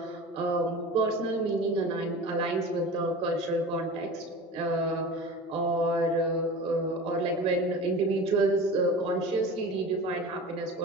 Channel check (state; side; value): normal; both; correlation 0.34